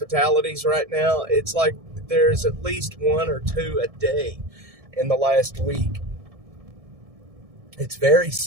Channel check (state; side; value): late; left; 1.7 ms